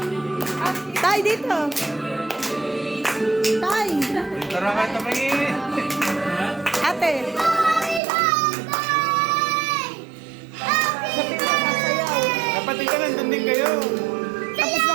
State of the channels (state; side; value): drops out; left; at 8.0 s